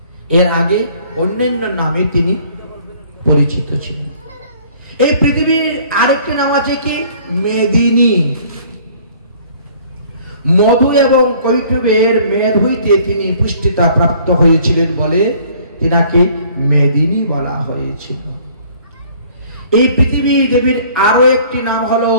এর আগে অন্যান্য নামে তিনি পরিচিত ছিলেন। এই পৃথিবীর আরেকটি নাম আছে কি? মেদিনী। মধু এবং কৈটবের মেদ হইতে তিনি পুষ্টিতা প্রাপ্ত হয়েছিলেন বলে তিনাকে মেদিনী বলা হয়েছিল। এই পৃথিবী দেবীর আরো একটি নাম হলো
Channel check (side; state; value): both; inverted; correlation -0.55